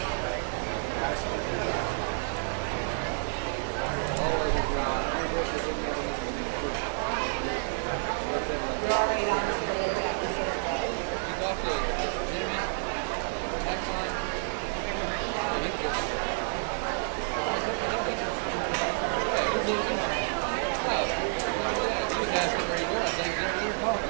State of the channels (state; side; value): silent; left; 58 dB below the other